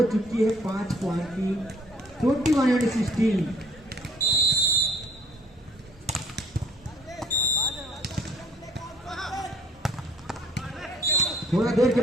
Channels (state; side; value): normal; both; correlation 0.58